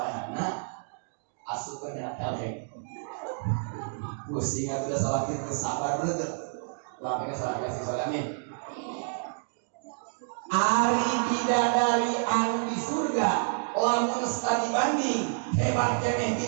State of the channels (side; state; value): left; silent; digital silence